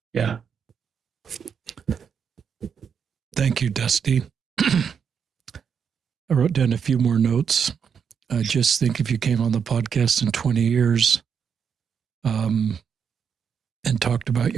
yeah. Thank you, Dusty. I wrote down a few more notes. I just think if you came on the podcast in 20 years and talked about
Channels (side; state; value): left; quieter; 7.0 dB